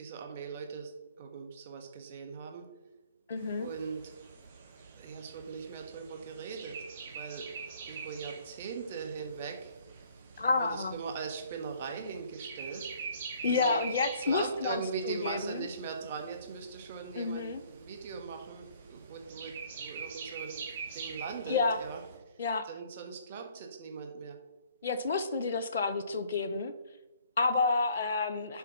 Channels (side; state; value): both; inverted; correlation -0.59